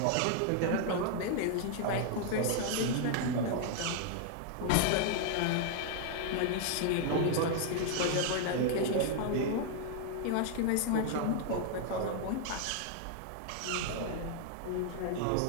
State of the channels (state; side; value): different; both; correlation 0.00